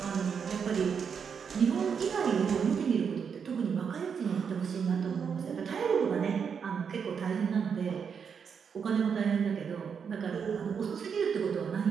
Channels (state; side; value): quieter; left; 6.7 dB